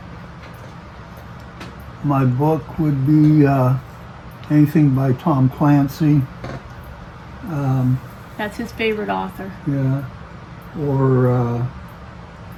my book would be anything by Tom Clancy. That's his favorite author. Yeah. Or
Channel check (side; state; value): both; identical; correlation 1.00